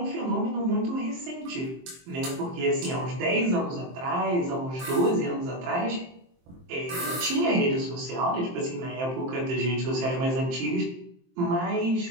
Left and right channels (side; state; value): left; late; 23 ms